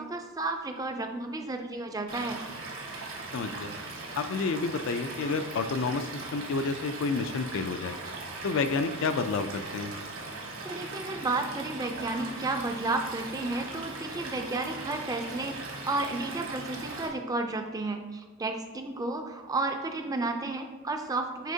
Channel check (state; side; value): normal; both; correlation 0.26